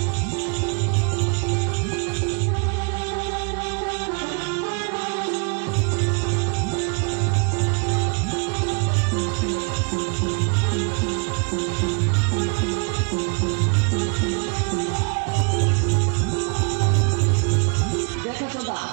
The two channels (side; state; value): left; quieter; 36.5 dB